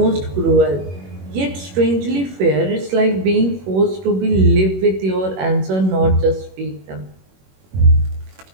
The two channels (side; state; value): left; late; 21 ms